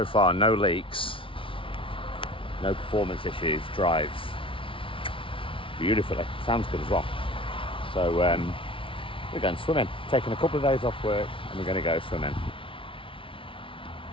far, no leaks, no performance issues, drives beautifully. Sounds good as well. So we're going swimming. Taking a couple of days off work and we're going to go swimming.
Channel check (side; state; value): right; late; 0.25 ms